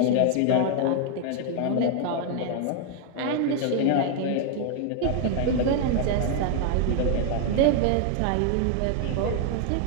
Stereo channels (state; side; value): different; both; correlation 0.00